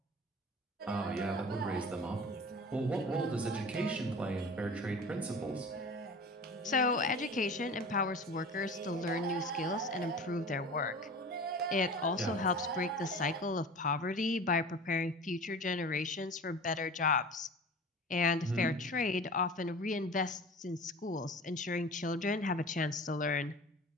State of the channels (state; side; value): normal; both; correlation 0.37